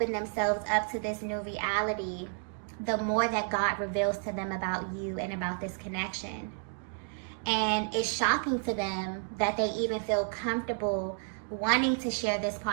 themselves up to this new reality, the more that God reveals to them about you and about this connection. And it's shocking to them that they even feel comfortable wanting to share this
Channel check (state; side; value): silent; left; 57 dB below the other